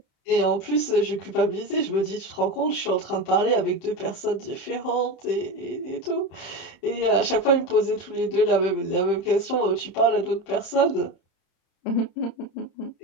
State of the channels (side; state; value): right; late; 31 ms